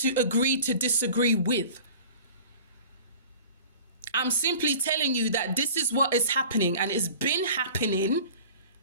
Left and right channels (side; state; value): both; inverted; correlation -0.42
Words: agree to disagree with? I'm simply telling you that this is what is happening, and it's been happening